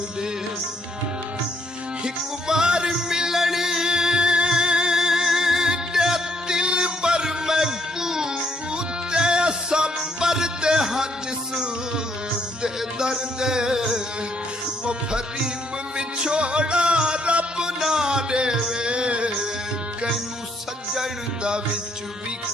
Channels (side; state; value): both; normal; correlation 0.70